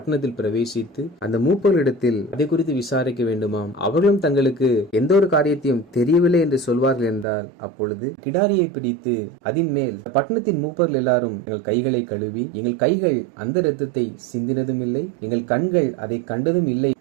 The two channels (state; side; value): drops out; left; at 7.2 s